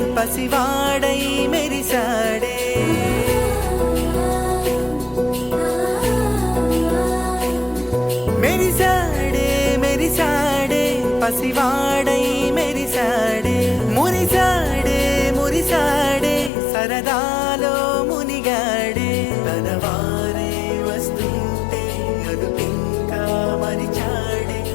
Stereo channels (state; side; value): drops out; right; at 16.5 s